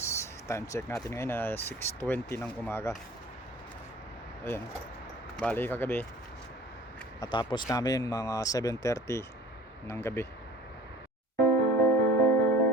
Time check natin ngayon na 6:20 ng umaga. Ayan, bali kagabi natapos namin mga 7:30 ng gabi.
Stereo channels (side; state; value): both; normal; correlation 0.45